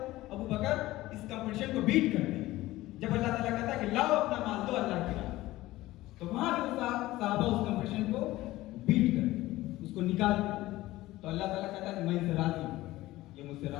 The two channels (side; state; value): right; quieter; 17.2 dB